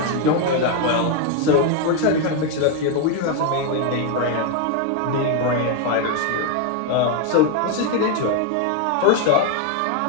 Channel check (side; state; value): both; different; correlation 0.01